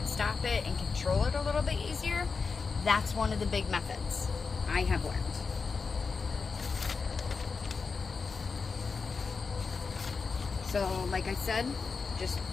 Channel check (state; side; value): quieter; right; 4.9 dB